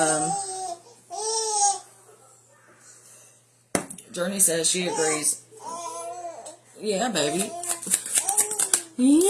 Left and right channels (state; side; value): identical; both; correlation 1.00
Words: Journey says she agrees. Yeah, baby.